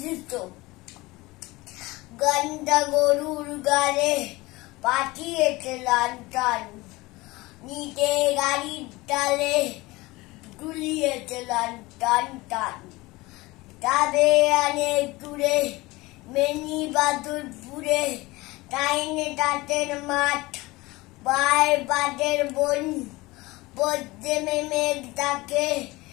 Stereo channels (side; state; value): right; quieter; 21.3 dB